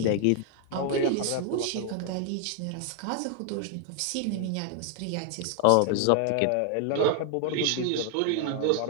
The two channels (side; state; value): both; different; correlation 0.00